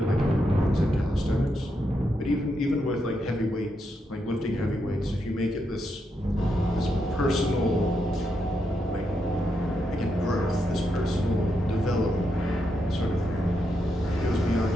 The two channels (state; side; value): normal; both; correlation 0.82